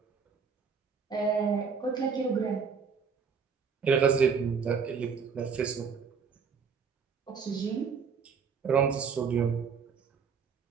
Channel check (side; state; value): left; quieter; 6.0 dB